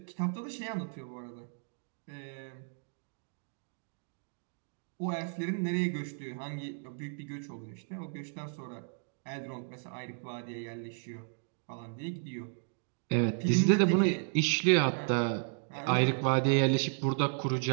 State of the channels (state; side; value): silent; left; 55 dB below the other